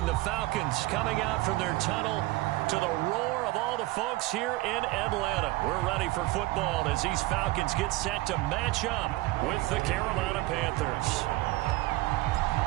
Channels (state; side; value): quieter; left; 19.4 dB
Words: The Falcons coming out from their tunnel to the roar of all the folks here in Atlanta. We're ready for football as these Falcons get set to match up with the Carolina Panthers.